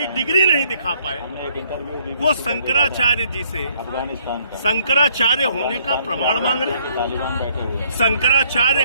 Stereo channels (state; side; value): inverted; both; correlation -0.65